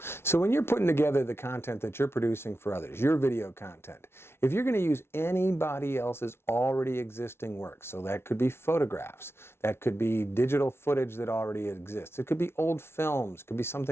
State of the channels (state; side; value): late; right; 0.12 ms